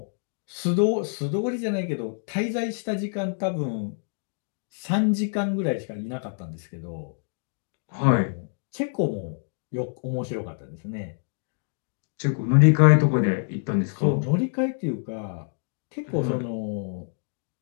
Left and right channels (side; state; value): right; silent; digital silence